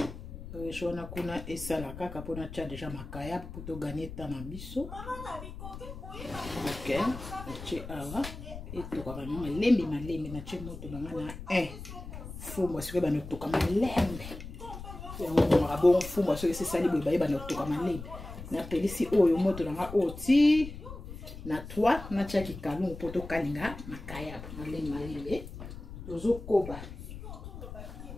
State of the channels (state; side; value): noise; left; rumble, 11 dB below the sound